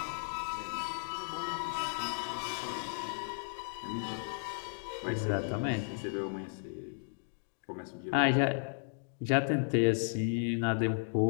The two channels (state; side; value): silent; right; digital silence